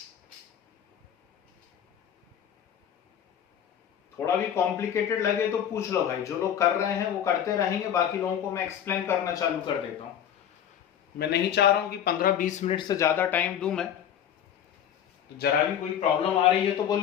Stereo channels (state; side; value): quieter; right; 9.5 dB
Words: थोड़ा भी कॉम्प्लिकेटेड लगे तो पूछ लो भाई, जो लोग कर रहे हैं वो करते रहेंगे, बाकी लोगों को मैं एक्सप्लेन करना चालू कर देता हूं। मैं नहीं चाह रहा हूं कि 15-20 मिनट से ज्यादा टाइम दूं मैं, तो जरा भी कोई प्रॉब्लम आ रही है तो